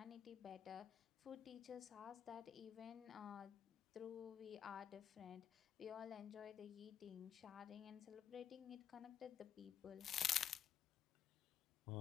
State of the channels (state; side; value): quieter; right; 9.2 dB